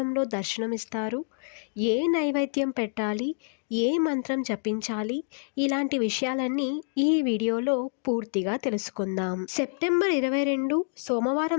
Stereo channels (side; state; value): right; silent; digital silence